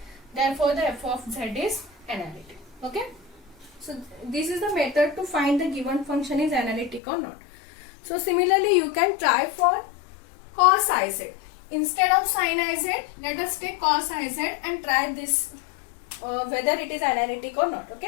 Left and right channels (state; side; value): drops out; right; at 7.0 s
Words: Therefore the f of z is analytic. Okay. So this is the method to find the given function is analytic or not. So similarly you can try for cos iz. Instead of sin iz, let us take cos iz and try this whether it is analytic or not.